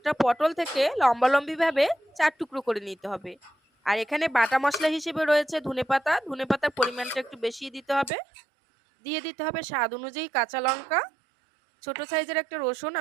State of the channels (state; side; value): drops out; left; at 8.1 s